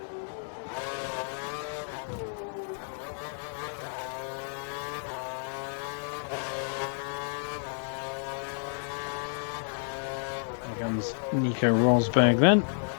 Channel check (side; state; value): right; silent; 57 dB below the other